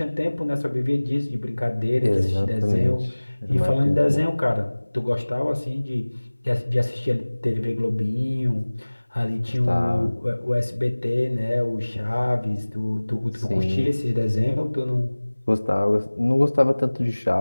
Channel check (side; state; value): both; inverted; correlation -1.00